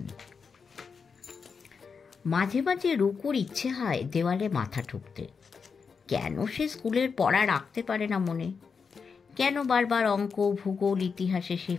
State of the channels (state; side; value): quieter; right; 5.6 dB